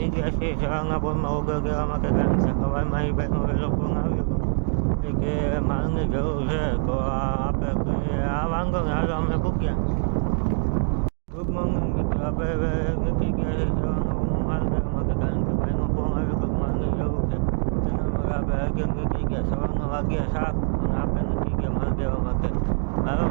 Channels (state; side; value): silent; left; digital silence